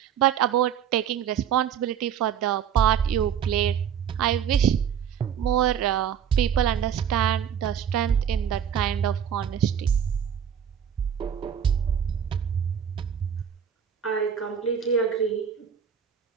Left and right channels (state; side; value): quieter; left; 8.5 dB